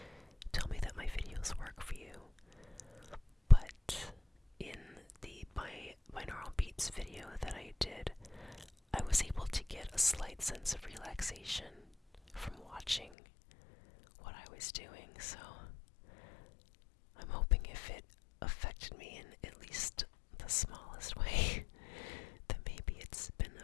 tell me that my videos work for you. But in the binaural beats video that I did, I was able to get a slight sense of relaxation from watching what I was doing, so I'm hoping if it affected me in at least the smallest way, that maybe it's been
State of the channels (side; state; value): right; drops out; at 13.1 s